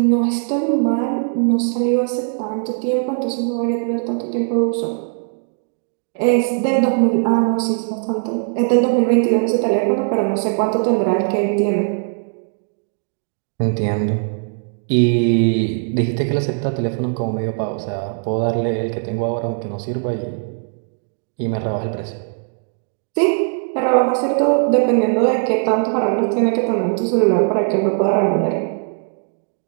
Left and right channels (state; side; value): silent; left; 60 dB below the other